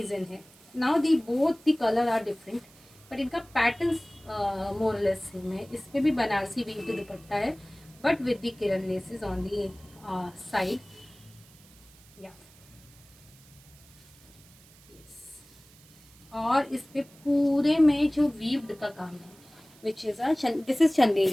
है। Now the both the colour are different, but इनका पैटर्न मोरलेस सेम है। इस पर भी बनारसी वीव की दुपट्टा है, but with the Kiran laces on the side. और इस पे पूरे में जो वीव्ड का काम है, which is this is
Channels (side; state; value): right; noise; hiss, 25 dB below the sound